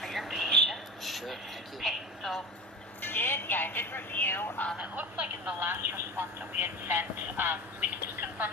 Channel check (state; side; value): normal; both; correlation 0.31